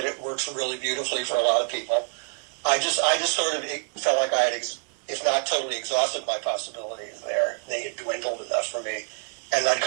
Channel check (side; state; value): left; quieter; 37.8 dB